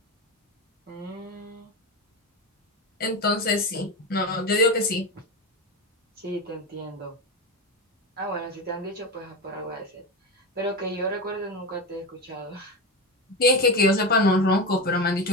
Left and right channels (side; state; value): both; normal; correlation 0.19